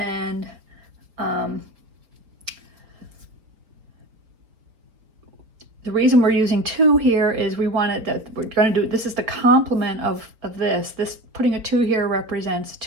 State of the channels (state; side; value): late; left; 4.6 ms